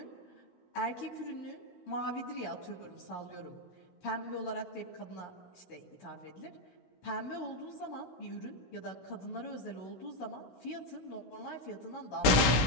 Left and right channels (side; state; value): right; late; 16 ms